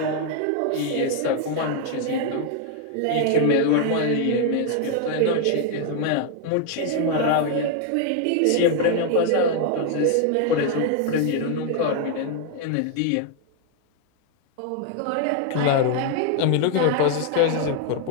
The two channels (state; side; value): different; both; correlation 0.00